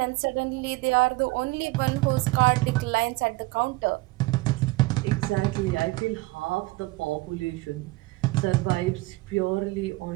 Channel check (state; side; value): quieter; left; 21.8 dB